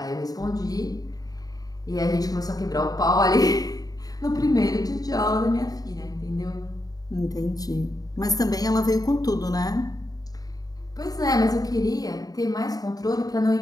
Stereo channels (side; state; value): right; late; 0.18 ms